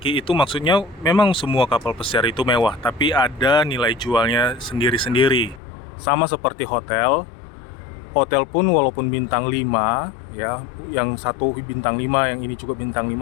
itu maksudnya memang semua kapal pesiar itu mewah, tapi ada nilai jualnya sendiri-sendiri. Sama seperti hotel. Hotel pun walaupun bintang 5 ya, yang satu bintang 5, yang ini juga bintang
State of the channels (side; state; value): right; drops out; at 5.6 s